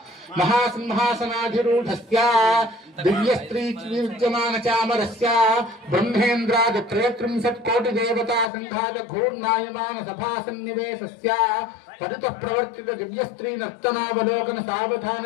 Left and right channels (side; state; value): right; drops out; at 8.5 s